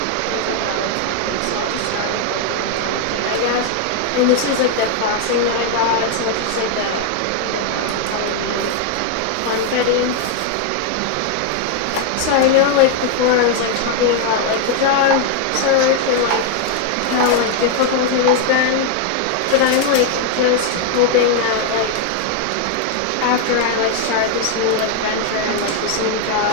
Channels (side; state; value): both; different; correlation 0.00